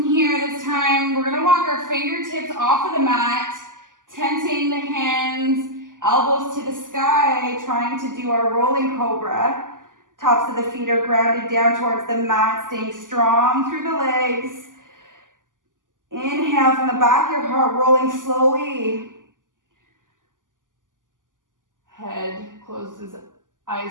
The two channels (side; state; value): left; late; 0.88 ms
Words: here, this time, we're gonna walk our fingertips off of the mat, tenting the hands, elbows to the sky, trying to do our rolling cobra. Tops of the feet are grounded down towards the mat, staying strong through the legs. Inhale from the back, your heart rolling slowly. Head closes,